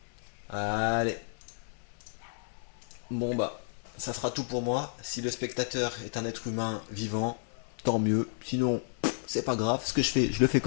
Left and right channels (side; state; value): right; silent; 57 dB below the other